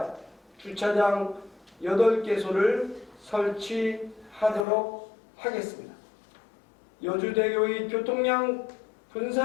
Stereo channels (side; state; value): right; drops out; at 4.7 s